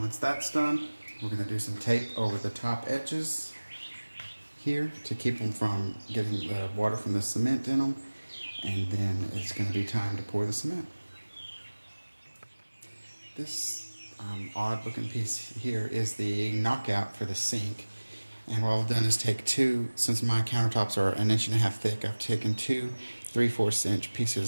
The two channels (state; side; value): inverted; both; correlation -1.00